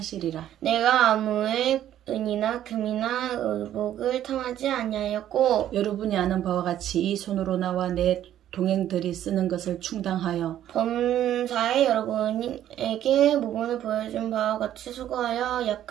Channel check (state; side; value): quieter; left; 11.6 dB